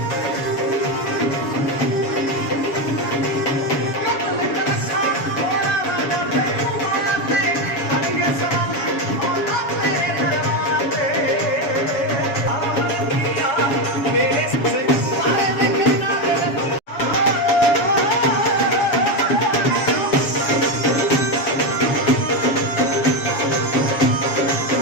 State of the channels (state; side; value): late; right; 7.1 ms